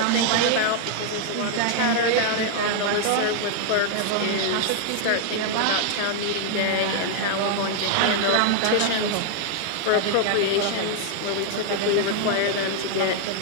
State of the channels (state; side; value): different; both; correlation 0.00